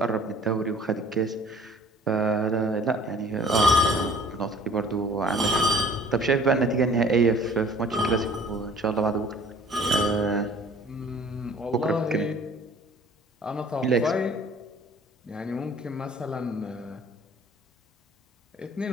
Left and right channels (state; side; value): normal; both; correlation 0.51